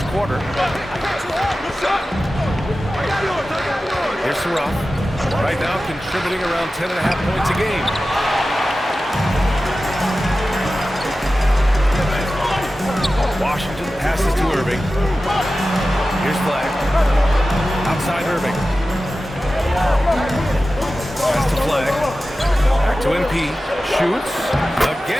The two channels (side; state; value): both; normal; correlation 0.94